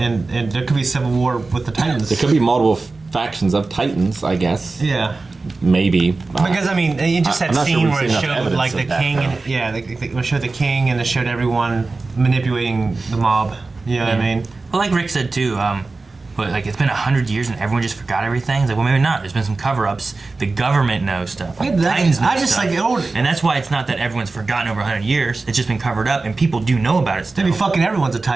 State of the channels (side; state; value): left; quieter; 3.7 dB